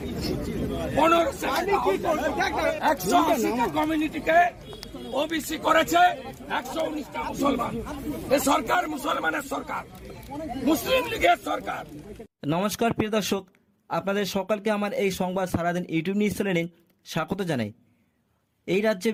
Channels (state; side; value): identical; both; correlation 1.00